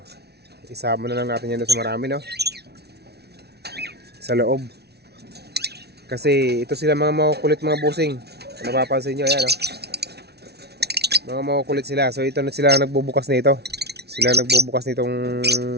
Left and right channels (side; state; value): left; late; 0.48 ms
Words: isama na lang natin yan sa marami, no, sa loob. Kasi ito sila mga makukulit mga busing. Napapansin nyo, yan, no? Mga makukulit sila. So ito na sila nagbubukas nito. Sila nagbubukas nitong